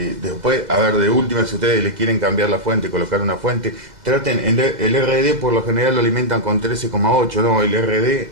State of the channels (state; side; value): late; left; 2.0 ms